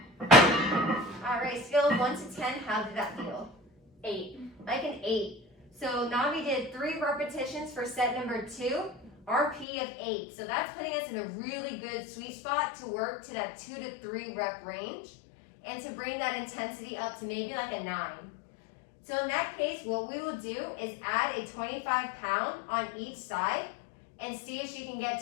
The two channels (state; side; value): drops out; right; at 9.7 s